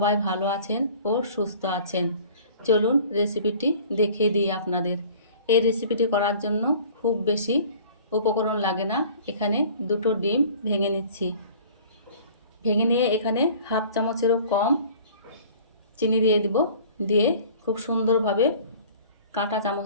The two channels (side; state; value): both; inverted; correlation -0.48